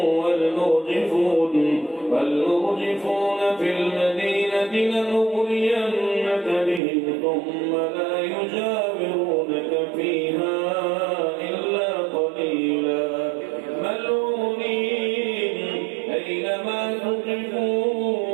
والمرجفون في المدينة لنغرينك بهم ثم لا يجاورونك فيها إلا قليلا ملعونين أينما ثقفوا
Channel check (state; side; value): drops out; left; at 6.8 s